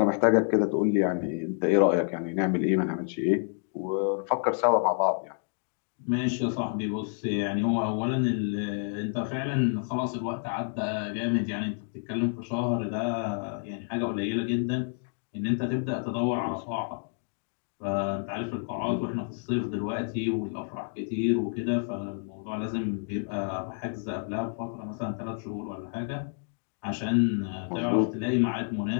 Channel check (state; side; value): silent; right; 59 dB below the other